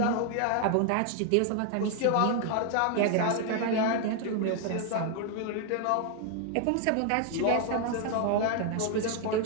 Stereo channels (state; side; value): different; both; correlation 0.00